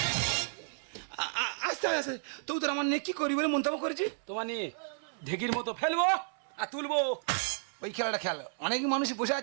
আস্তে আস্তে তো তোর আমার নিয়ে কি করি বলে মন্তব্য করেছি। তোমার নিয়ে ঢেকির মতো ফেলবো আর তুলবো। ওই খেলাটা খেল, অনেক মানুষ বসে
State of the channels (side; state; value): left; silent; 56 dB below the other